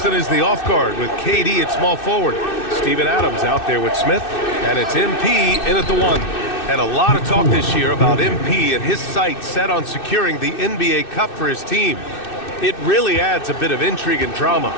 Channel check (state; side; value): late; right; 2.6 ms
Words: is the off guard with KD at small forward. Steven Adams out there with Smith. And it's MP in at the 1. And a lot of talk this year about MP and his sights set on securing the NBA Cup for his team. It really adds a bit of intrigue and drama